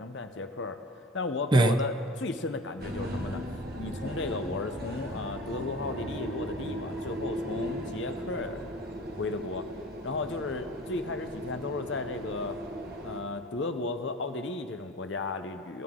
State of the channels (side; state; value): both; normal; correlation 0.41